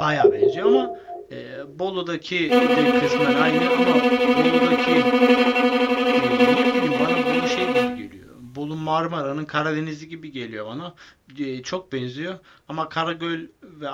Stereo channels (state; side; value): identical; both; correlation 1.00